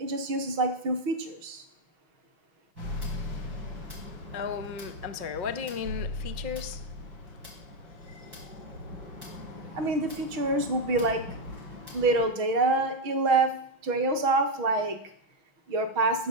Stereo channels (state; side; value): late; left; 6.3 ms